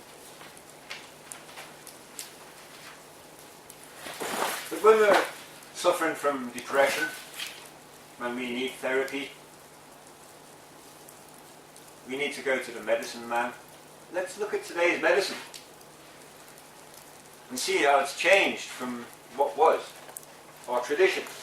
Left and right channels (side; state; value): both; identical; correlation 1.00